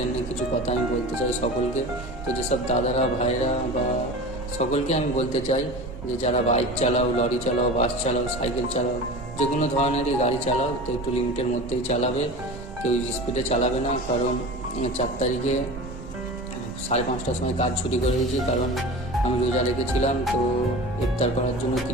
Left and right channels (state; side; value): normal; both; correlation 0.33